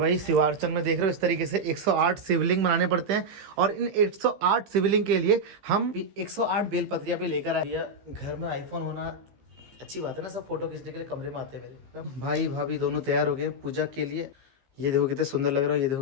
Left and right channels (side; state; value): left; late; 15 ms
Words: शिवार्चन में देख रहे हो इस तरीके से 108 शिवलिंग बनाने पड़ते हैं, और इन 108 शिवलिंग के लिए हम 108 बेलपत्रियां पे लेकर आए। घर में आईफोन होना अच्छी बात है ना, सब फोटो खींचने के लिए कमरे में आते हैं मेरे। भाई भाभी दोनों तैयार हो गए पूजा के लिए। ये देखो कितने सुंदर लग रहा है, ये